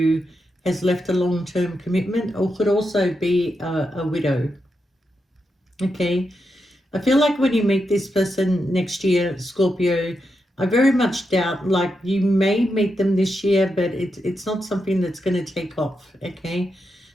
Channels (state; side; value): normal; both; correlation 0.85